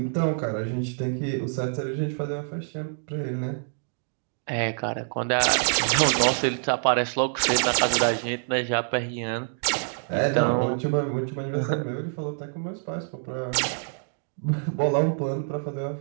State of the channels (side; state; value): left; silent; digital silence